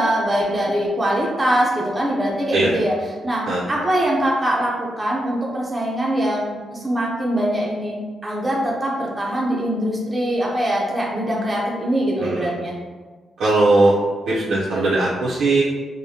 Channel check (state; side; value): normal; both; correlation 0.84